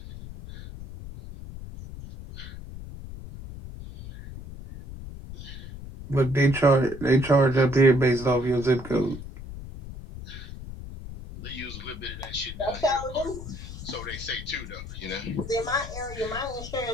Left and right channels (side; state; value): left; noise; rumble, 11 dB below the sound